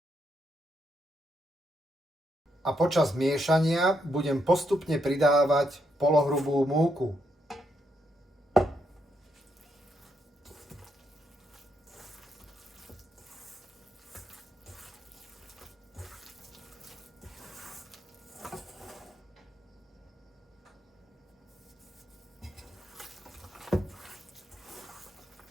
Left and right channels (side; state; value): both; normal; correlation 0.78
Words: a počas miešania budem postupne pridávať polohrubú múku.